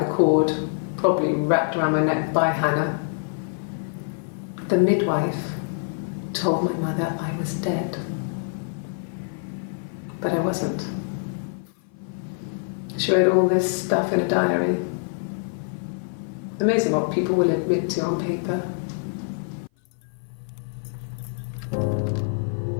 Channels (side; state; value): right; silent; 57 dB below the other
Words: the cord, probably wrapped around my neck by Hannah. The midwife told my mother I was dead. But I wasn't. She wrote all this stuff in a diary. Amazing what people will admit to on paper.